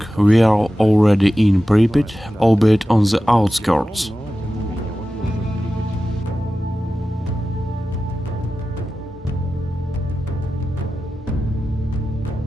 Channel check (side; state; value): both; normal; correlation 0.94